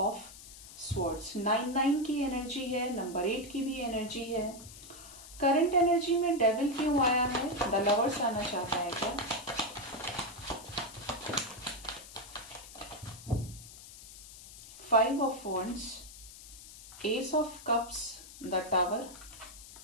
Swords. 9 की energy है, number 8 की भी energy है। Current energy में devil क्यों आया है? The lovers आना चाहता है क्या? Five of Wands, Ace of Cups, the Tower,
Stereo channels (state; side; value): noise; left; hiss, 16 dB below the sound